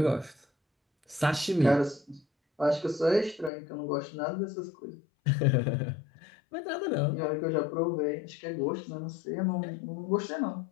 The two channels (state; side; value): drops out; right; at 3.5 s